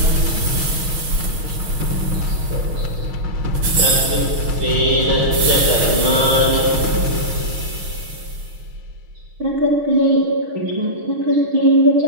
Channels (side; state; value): left; late; 6.4 ms